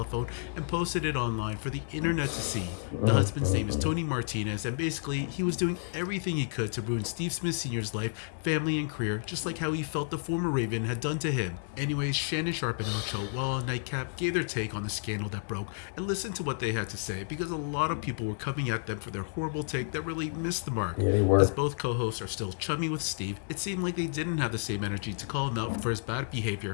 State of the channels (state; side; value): silent; right; digital silence